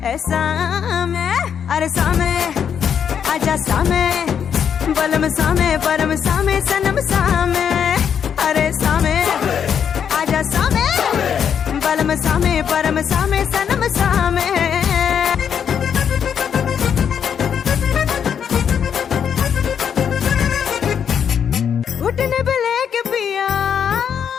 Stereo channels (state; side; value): quieter; right; 7.9 dB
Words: ऐसा में। अरे सामे आजा सामे बलम सामे परम सामे सनम सामे। अरे सामे आजा सामे बलम सामे परम सामे सनम सामे। घुटने पे लेके पिया